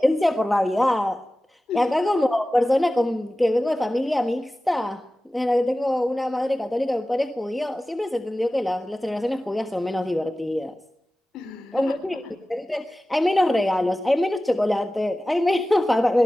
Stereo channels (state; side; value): normal; both; correlation 0.96